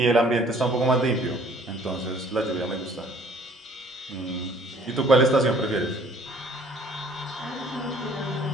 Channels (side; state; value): both; normal; correlation 0.56